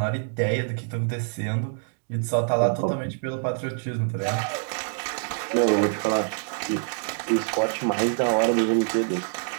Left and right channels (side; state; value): left; silent; 61 dB below the other